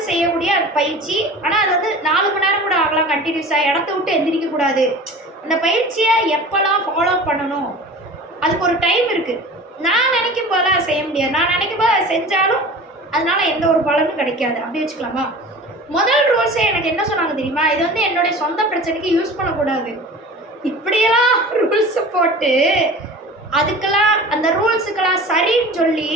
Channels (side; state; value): both; normal; correlation 0.38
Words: செய்யக்கூடிய அது பயிற்சி. ஆனால் அது வந்து 4 மணி நேரம் கூட ஆகலாம் கண்டினியூஸாக, இடத்த விட்டு எந்திரிக்கக்கூடாது. அந்த பயிற்சியை எப்போல்லாம் ஃபாலோ பண்ணணும் அதுக்கு ஒரு டைம் இருக்குது. நான் நினைக்கும் போது அதை செய்ய முடியாது, நான் நினைக்கும் போது அதை செஞ்சாலும் அதனால் எந்த ஒரு பலனும் கிடைக்காது. அப்படி வச்சுக்கலாமா? முதல் ரூல்ஸே எனக்கு என்ன சொன்னாங்க தெரியுமா, இது வந்து என்னுடைய சொந்த பிரச்சனைக்கு யூஸ் பண்ணக்கூடாது. இப்படியெல்லாம் ரூல்ஸை போட்டு அதுக்கெல்லாம் அந்த ரூல்ஸுக்கெல்லாம் சரின்னு சொல்லி